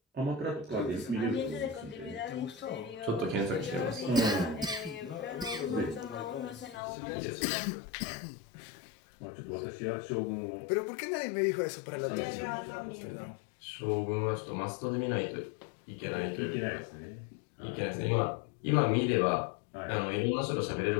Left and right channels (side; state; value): right; drops out; at 6.8 s